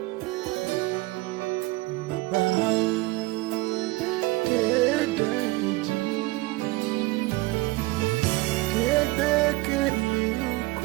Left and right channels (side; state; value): left; quieter; 21.5 dB